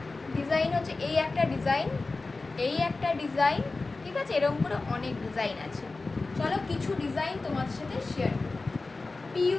ডিজাইন হচ্ছে এই একটা ডিজাইন, এই একটা ডিজাইন, ঠিক আছে? এরকম করে অনেক ডিজাইন আছে। চলো কিছু ডিজাইন তোমাদের সাথে শেয়ার করি।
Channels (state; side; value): quieter; right; 3.6 dB